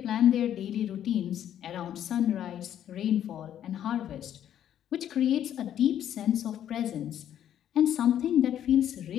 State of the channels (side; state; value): right; quieter; 10.5 dB